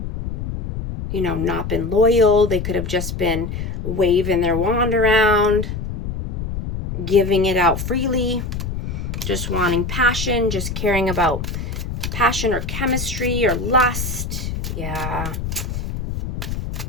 you know, not been loyal. They could have just been waving their wand around, giving it out freely, just wanting passion, just caring about passion or chemistry or lust. Yeah.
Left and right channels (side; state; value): left; noise; rumble, 5 dB below the sound